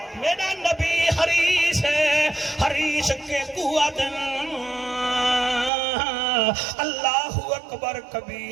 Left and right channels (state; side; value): drops out; left; at 5.7 s